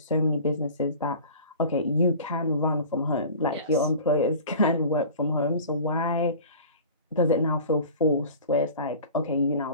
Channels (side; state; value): both; inverted; correlation -0.41